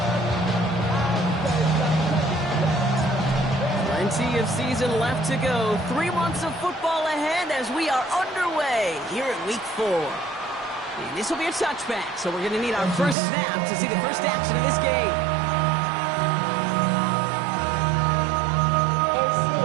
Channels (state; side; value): drops out; left; at 13.2 s